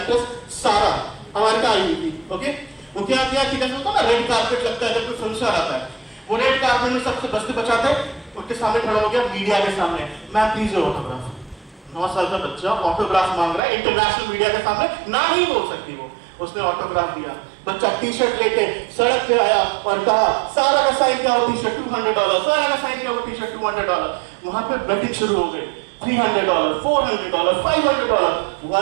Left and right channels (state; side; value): drops out; left; at 13.6 s